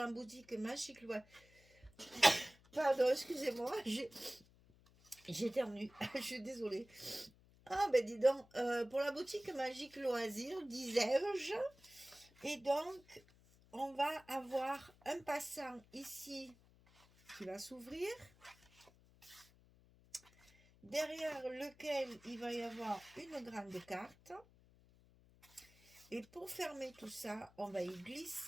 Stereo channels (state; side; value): noise; left; hum, 27 dB below the sound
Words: boutique Magique Loisirs. Pardon, excusez-moi, j'éternue, je suis désolée. Ah ben dis donc, pour la boutique Magique Loisirs, disais-je. Et donc, on va avoir un passant ici qui va s'ouvrir, derrière lequel il va y avoir une grande carte. Et pour fermer tout ça, on va y